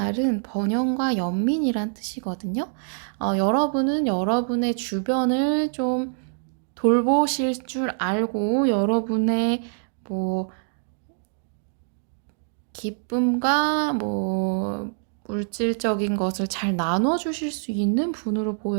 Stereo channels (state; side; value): silent; left; digital silence